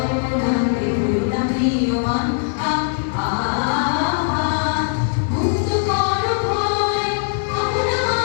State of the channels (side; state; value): right; silent; 66 dB below the other